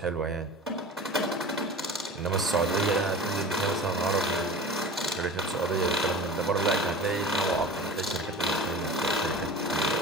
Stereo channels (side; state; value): both; normal; correlation 0.36